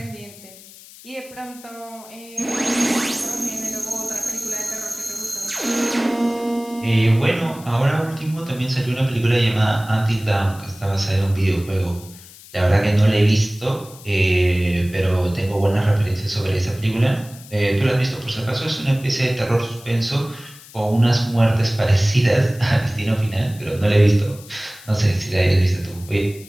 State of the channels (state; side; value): noise; left; hiss, 20 dB below the sound